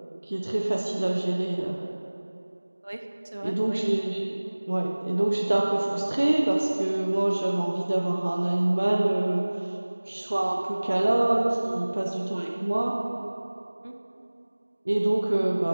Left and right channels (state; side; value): inverted; both; correlation -1.00